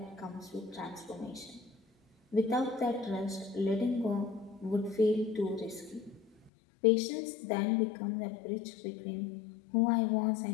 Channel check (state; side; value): drops out; right; at 6.5 s